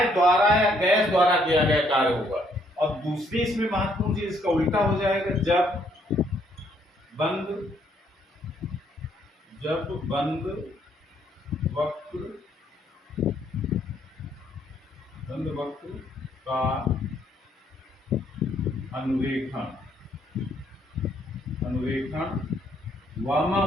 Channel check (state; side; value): normal; both; correlation 0.69